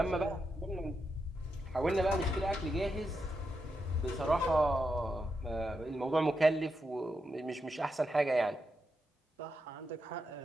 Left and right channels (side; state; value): both; normal; correlation 0.85